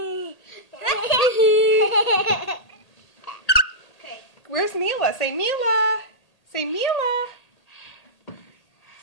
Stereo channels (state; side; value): late; right; 1.8 ms